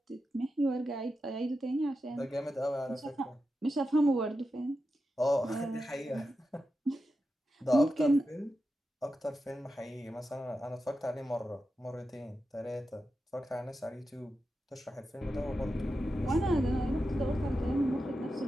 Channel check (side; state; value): both; normal; correlation 0.90